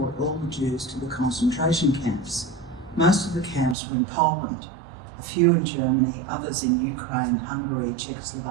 all the Jews to the concentration camps. Most of the camps were in Poland, a few in Germany, others in Ukraine, Hungary,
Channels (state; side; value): drops out; left; at 3.8 s